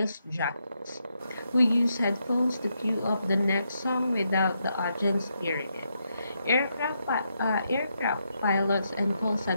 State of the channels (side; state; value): both; inverted; correlation -0.81